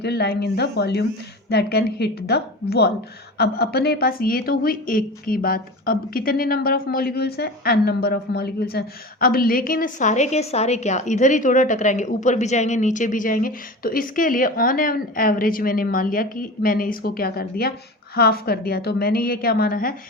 lying in the volume that can hit the wall. अब अपने पास ये तो हुई एक की बात। अब कितने नंबर ऑफ मॉलिक्यूल्स हैं, n नंबर ऑफ मॉलिक्यूल्स हैं। अब लेकिन सारे के सारे क्या इधर ही थोड़ा टकराएंगे, ऊपर भी जाएंगे नीचे भी जाएंगे। तो इसके लिए ऑन एन एवरेज मैंने मान लिया कि मैंने इसको क्या कर दिया, हाफ कर दिया। तो मैंने ये क्या माना है,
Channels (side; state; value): both; normal; correlation 0.31